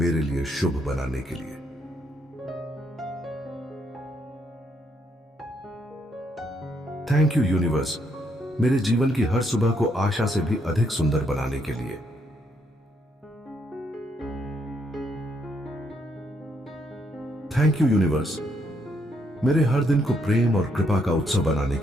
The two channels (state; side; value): normal; both; correlation 0.74